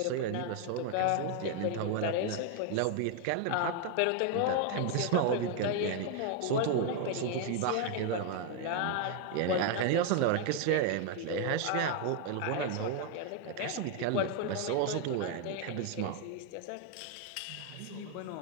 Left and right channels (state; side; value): different; both; correlation 0.01